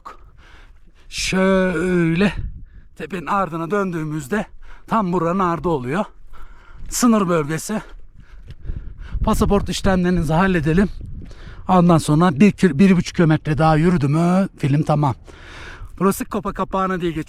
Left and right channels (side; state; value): both; identical; correlation 1.00